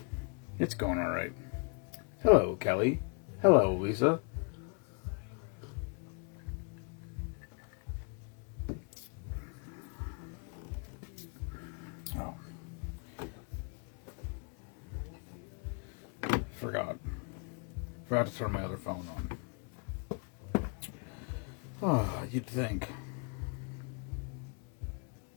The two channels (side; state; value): right; quieter; 36.7 dB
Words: It's going all right. Hello, Kelly. Hello, Lisa. Oh. Forgot to turn my other phone on. Oh, you'd think.